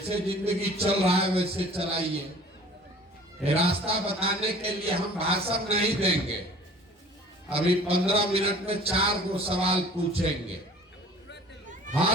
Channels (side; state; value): both; normal; correlation 0.48